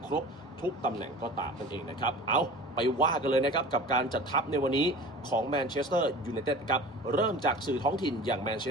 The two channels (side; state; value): both; normal; correlation 0.38